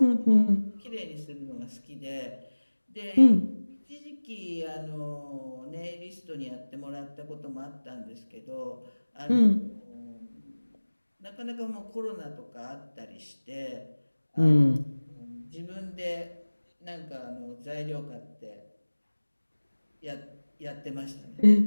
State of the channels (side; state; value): both; inverted; correlation -1.00